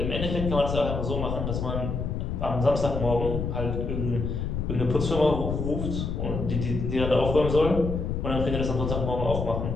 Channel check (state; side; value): noise; left; rumble, 3 dB below the sound